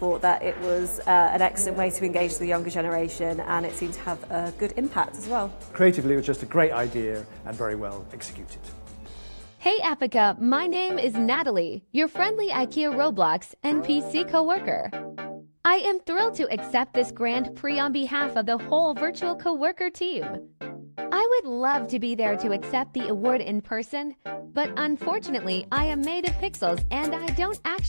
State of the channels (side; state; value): both; inverted; correlation -1.00